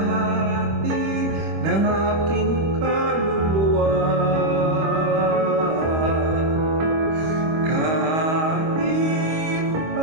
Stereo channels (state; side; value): late; left; 25 ms